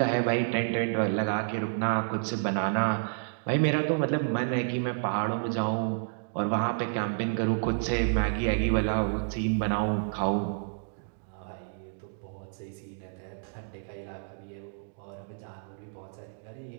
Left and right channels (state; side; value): silent; left; digital silence